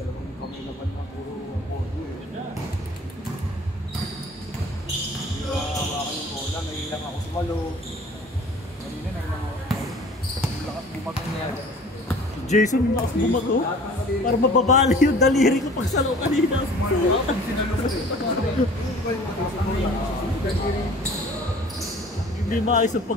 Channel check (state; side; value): normal; both; correlation 0.47